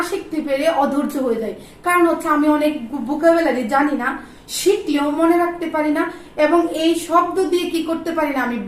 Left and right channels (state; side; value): identical; both; correlation 1.00